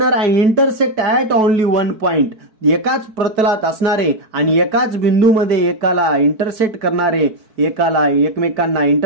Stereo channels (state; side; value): late; left; 4.6 ms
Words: and intersect at only one point. एकाच प्रतलात असणारे आणि एकाच बिंदूमध्ये एकाला इंटरसेक्ट करणारे, एकाला एकमेकांना